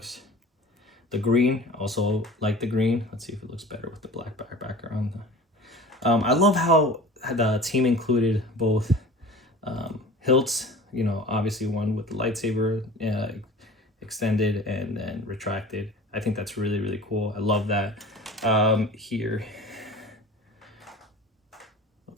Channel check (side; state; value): both; normal; correlation 0.40